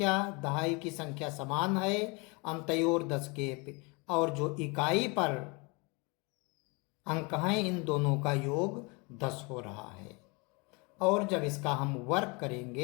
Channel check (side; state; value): right; quieter; 29.2 dB